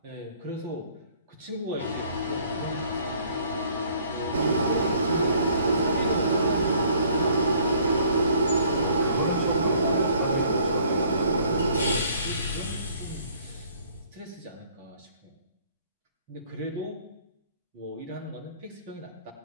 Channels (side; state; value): both; inverted; correlation -0.59